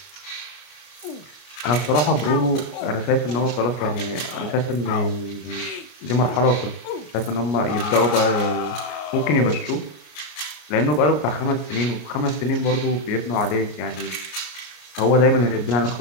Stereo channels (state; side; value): late; right; 33 ms